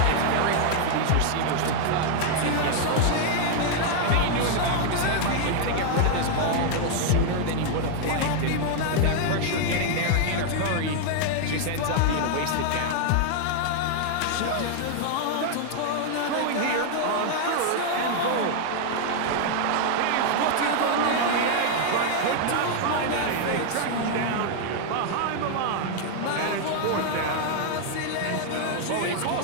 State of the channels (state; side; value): different; both; correlation 0.00